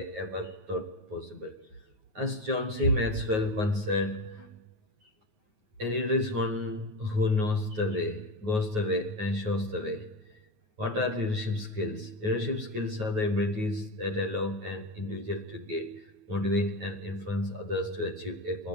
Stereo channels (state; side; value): late; left; 9.4 ms